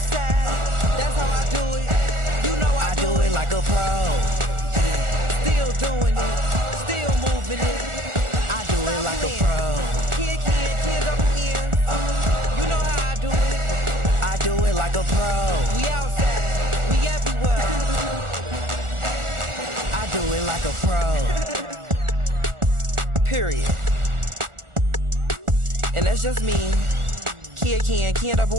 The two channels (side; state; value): left; late; 1.4 ms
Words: that's how I do it. You know I do it like a pro. Yeah. Still doing it, still moving it. I do it like a pro. Kid, double N. You know how I do it. I do it like a pro. We outside, we everywhere. I do it like a pro. Period. And that's just me. Kid